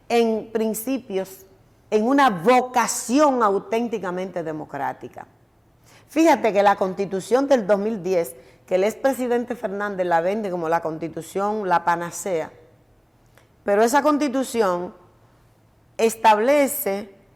en principios, en una vocación auténticamente democrática. Fíjate que la Constitución del 2010, que el expresidente Fernández la vende como la Constitución, la panacea, pero esa Constitución establece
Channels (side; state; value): both; identical; correlation 1.00